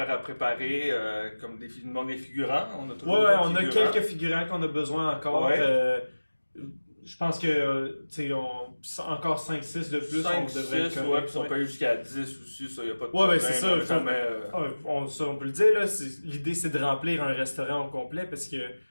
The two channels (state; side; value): inverted; both; correlation -1.00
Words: à préparer, comme il manque des figurants. On a toujours on a quelques figurants qu'on a besoin encore. Je pense que, encore 5-6 de plus, 5, on devrait 6, puis on peut aller jusqu'à 10 aussi, ça, y a pas de problème. C'est ça. On peut le dire, là, l'idée, c'est de remplir un restaurant au complet, parce que,